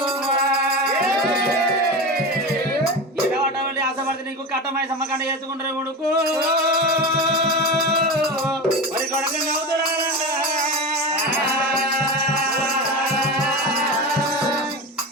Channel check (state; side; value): normal; both; correlation 0.24